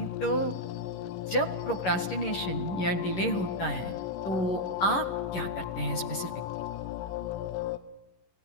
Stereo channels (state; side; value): late; right; 11 ms